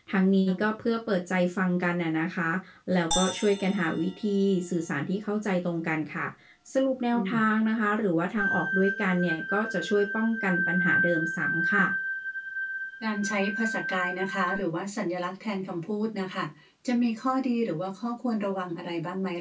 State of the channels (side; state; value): both; identical; correlation 1.00